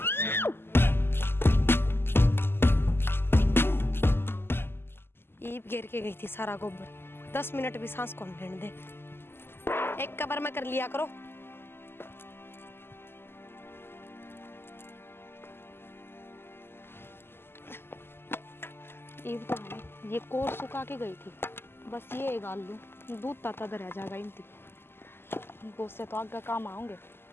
ईब घेर के गई थी सारा गोबर 10 मिनट भी सांस कौन लेने दे। एक कबर में कर लिया करो। ईब तो हमें ये कोर सुखा के गई थी, बस ये गाल लूं दूध ताता रह जाएगा इनती वो से तो आगे काम आऊंगे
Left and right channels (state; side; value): late; right; 0.11 ms